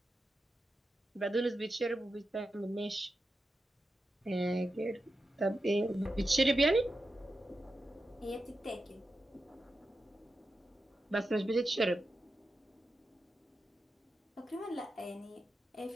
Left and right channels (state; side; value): normal; both; correlation 0.90